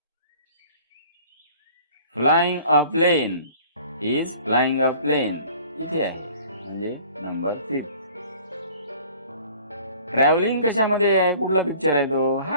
Flying a plane. Is flying a plane. इथे आहे, म्हणजे नंबर 5. ट्रॅव्हलिंग कशामध्ये आहे? कुठला पिक्चर आहे तो?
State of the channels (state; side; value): inverted; both; correlation -0.50